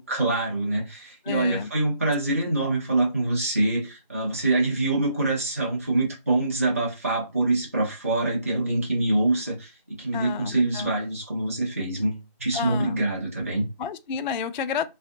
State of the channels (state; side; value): inverted; both; correlation -0.71